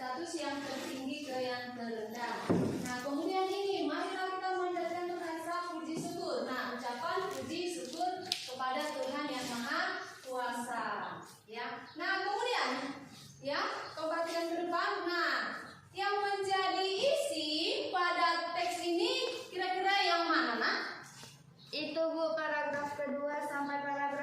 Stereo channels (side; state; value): both; identical; correlation 1.00